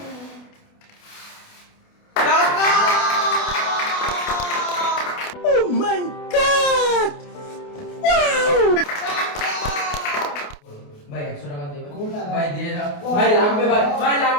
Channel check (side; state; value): right; late; 28 ms